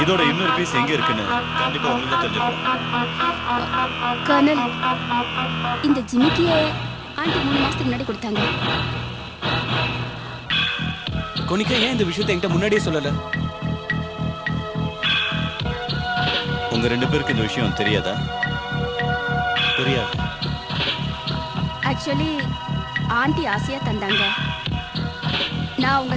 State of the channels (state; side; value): identical; both; correlation 1.00